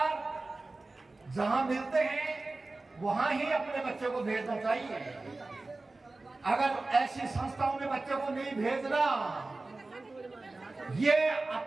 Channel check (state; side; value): quieter; left; 3.3 dB